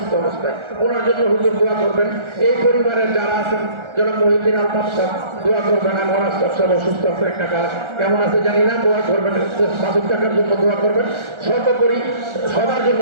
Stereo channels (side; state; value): left; late; 1.4 ms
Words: অবস্থায়, ওনার জন্য হুজুর দোয়া করবেন। এই পরিবারের যারা আছেন জনাব মহিউদ্দিন আলতাফ সাহেব দোয়া করবেন। আমার আলতাফ সাহেব অসুস্থ আছে, একটা কাজ কেমন আছে জানি না, দোয়া করবেন। মাসুদ টাকার জন্য দোয়া করবেন, সর্বোপরি সবার জন্য